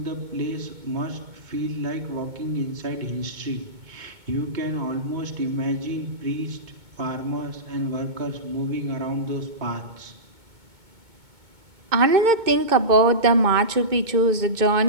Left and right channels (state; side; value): late; left; 2.2 ms